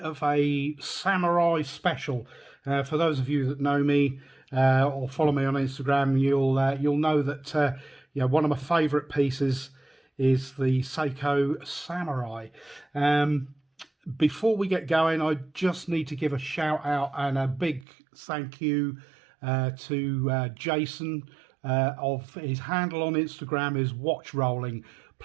of a samurai special. For those of you that know me or follow me on Instagram, you'll know that one of my favourite pieces is the Seiko Samurai. Before we get going, I just need to give a shout out and a big thank you to Jason. Of his handle on Instagram is Watch Rolling.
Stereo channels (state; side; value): drops out; left; at 17.9 s